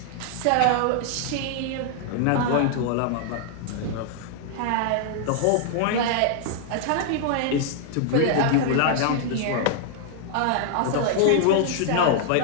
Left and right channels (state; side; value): different; both; correlation -0.01